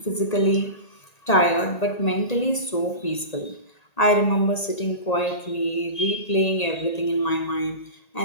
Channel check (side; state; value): right; late; 1.8 ms